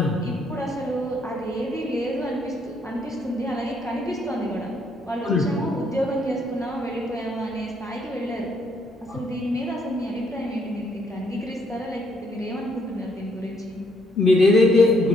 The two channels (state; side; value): normal; both; correlation 0.70